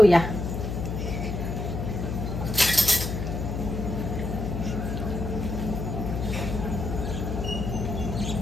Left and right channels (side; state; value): left; noise; hum, 3 dB below the sound